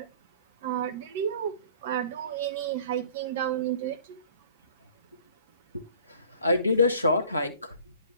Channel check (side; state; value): both; inverted; correlation -0.50